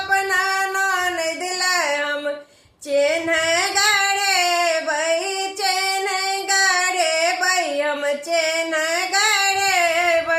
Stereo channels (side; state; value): both; identical; correlation 1.00